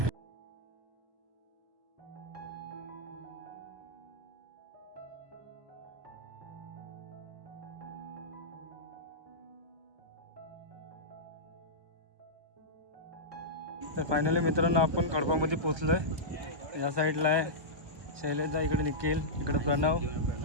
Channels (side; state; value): left; late; 1.2 ms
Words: तर फायनली मित्रांनो आपण खडपामध्ये पोचलो आहे. या साईडला आहे शैलेशदा, इकडे निखिल, इकडे प्रणव.